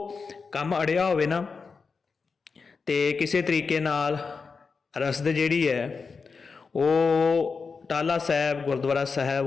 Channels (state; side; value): quieter; right; 4.9 dB